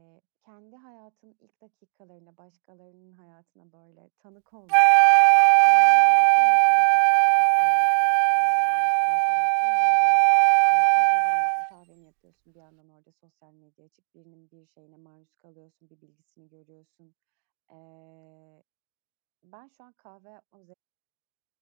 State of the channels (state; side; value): silent; left; digital silence